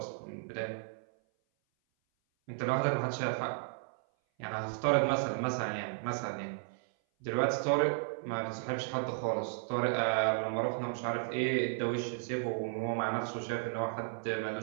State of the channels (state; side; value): silent; left; 55 dB below the other